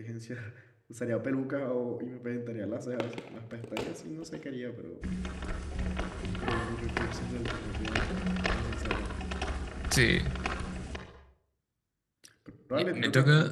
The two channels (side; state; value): both; identical; correlation 1.00